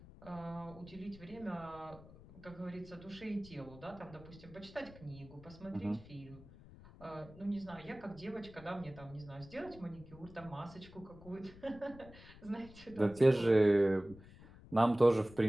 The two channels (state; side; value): noise; left; rumble, 19 dB below the sound